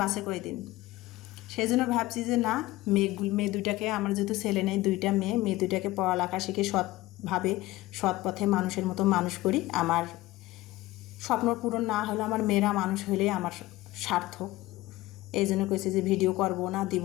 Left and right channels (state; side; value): quieter; right; 18.2 dB